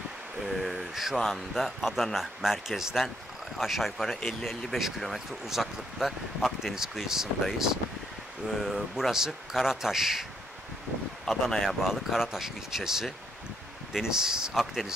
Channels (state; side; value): normal; both; correlation 0.74